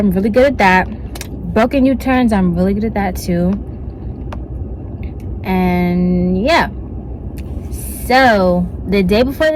really good at that. Broken U-turns, I'm really good at that too. And yeah, so the day before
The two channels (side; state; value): both; identical; correlation 1.00